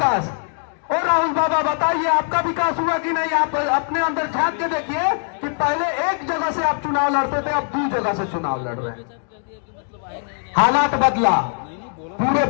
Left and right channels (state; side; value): silent; right; 57 dB below the other